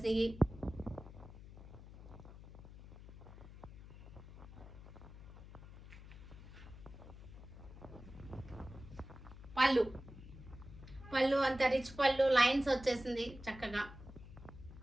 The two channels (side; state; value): left; noise; hum, 15 dB below the sound